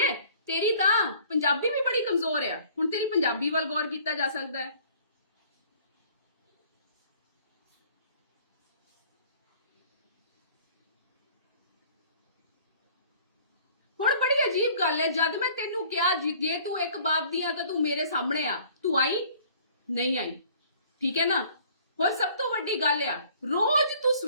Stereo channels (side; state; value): both; inverted; correlation -0.54